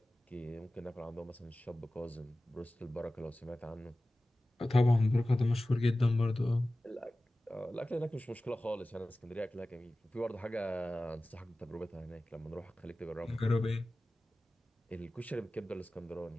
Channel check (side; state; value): both; normal; correlation 0.96